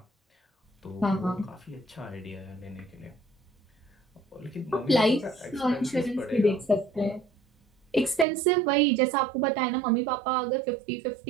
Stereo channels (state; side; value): drops out; left; at 8.2 s